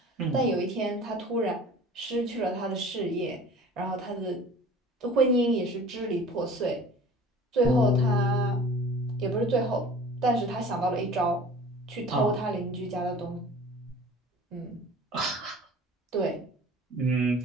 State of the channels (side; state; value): both; normal; correlation 0.44